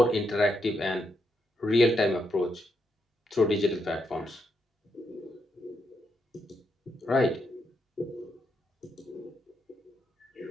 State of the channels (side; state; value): both; normal; correlation 0.81